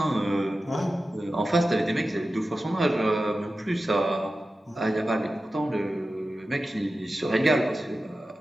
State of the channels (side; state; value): both; normal; correlation 0.93